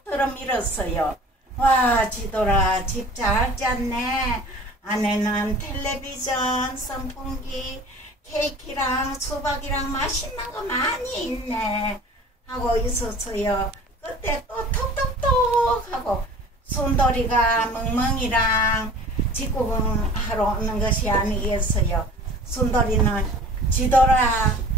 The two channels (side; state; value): both; normal; correlation 0.44